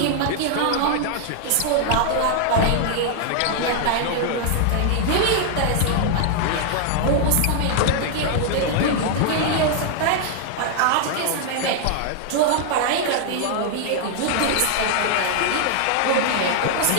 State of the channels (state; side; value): different; both; correlation 0.00